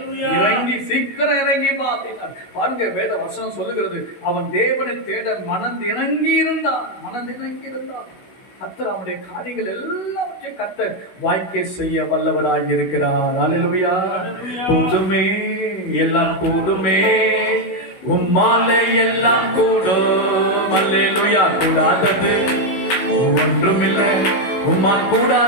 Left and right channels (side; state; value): right; late; 16 ms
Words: இறங்கி சீக்கிரம் இறங்கி வா அப்படின்னா பாருங்க, வேத வசனம் சொல்லுகிறது, அவன் தேவனை தேட மனதிணங்கி இருந்தான். கர்த்தர் அவனுடைய காரியங்கள் எல்லாவற்றையும் கர்த்தர் வாய்க்கை செய்ய வல்லவராய் இருக்கிறார். அல்லேலூயா. கூடுமே, எல்லாம் கூடுமே, உம்மாலே எல்லாம் கூடும். அல்லேலூயா. கூடாதது ஒன்றுமில்லை, உம்மால்